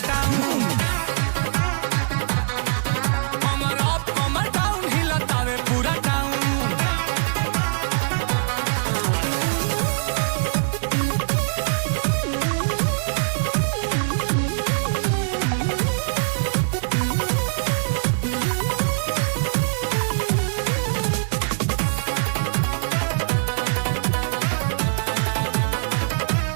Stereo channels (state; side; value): silent; left; digital silence